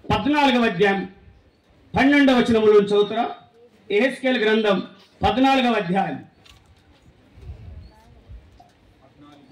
14వ అధ్యాయం 12వ వచనముల నుంచి చదువుతారా? యెహెజ్కేలు గ్రంథం 14వ అధ్యాయం.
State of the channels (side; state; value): both; identical; correlation 1.00